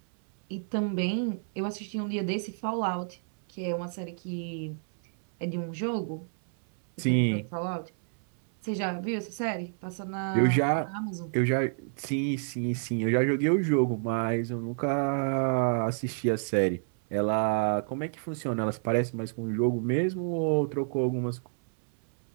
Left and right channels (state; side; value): silent; left; 59 dB below the other